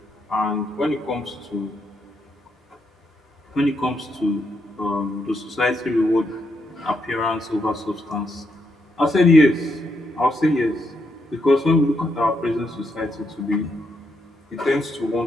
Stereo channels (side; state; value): both; normal; correlation 0.79